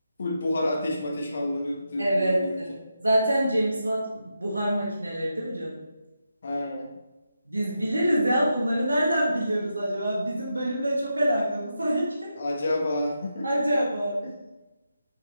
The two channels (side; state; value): both; inverted; correlation -0.86